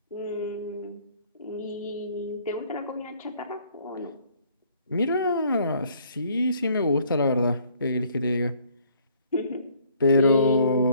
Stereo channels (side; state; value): both; inverted; correlation -0.60